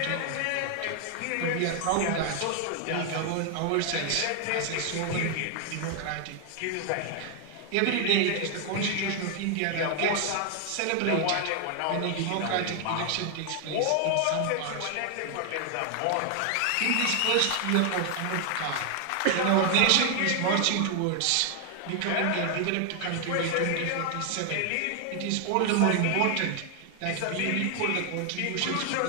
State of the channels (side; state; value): both; different; correlation 0.00